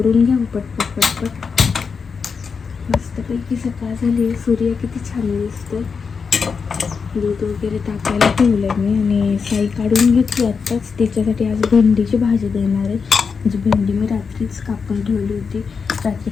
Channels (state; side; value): quieter; right; 5.5 dB